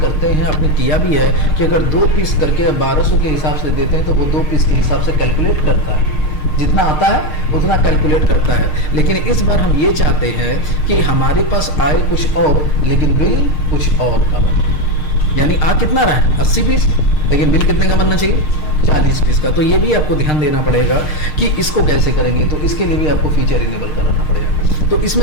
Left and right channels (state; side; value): late; right; 6.5 ms